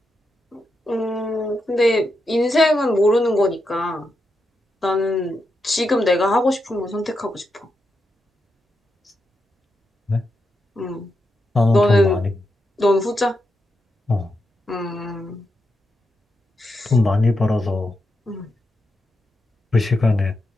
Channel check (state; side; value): normal; both; correlation 0.85